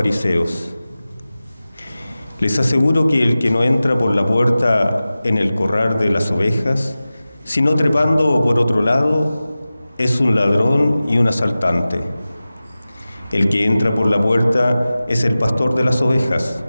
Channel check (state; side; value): inverted; both; correlation -0.96